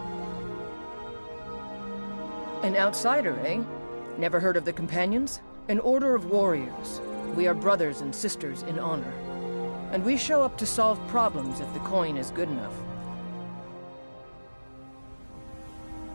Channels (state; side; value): inverted; both; correlation -1.00